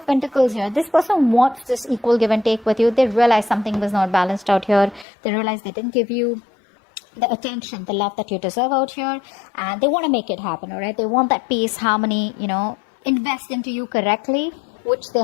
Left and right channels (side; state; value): right; drops out; at 5.1 s